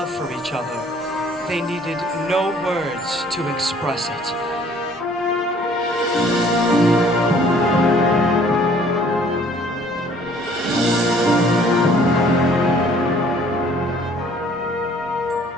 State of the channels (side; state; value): both; normal; correlation 0.57